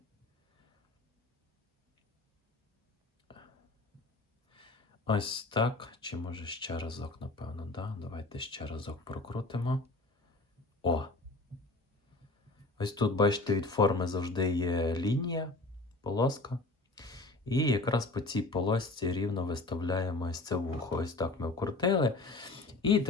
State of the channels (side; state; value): right; quieter; 3.0 dB